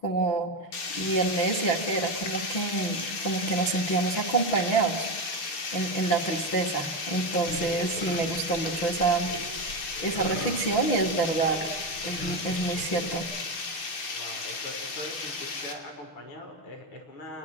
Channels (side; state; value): right; late; 6.4 ms